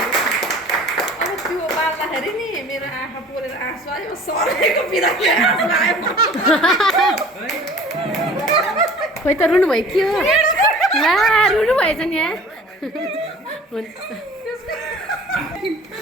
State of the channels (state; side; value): normal; both; correlation 0.46